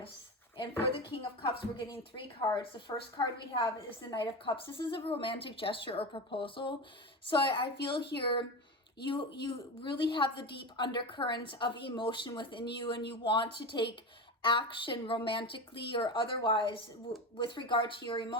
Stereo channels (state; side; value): normal; both; correlation 0.23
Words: And for the King of Cups, we're getting 3 cards. The first card we have is the Knight of Cups. This is a romantic gesture or proposal. So I feel here you really have the deep undercurrents of emotion within you, and you want to take action romantically or otherwise with regard to your